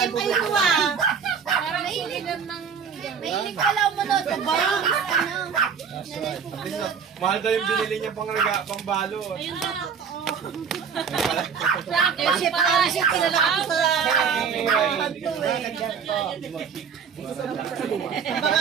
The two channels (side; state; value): left; quieter; 6.5 dB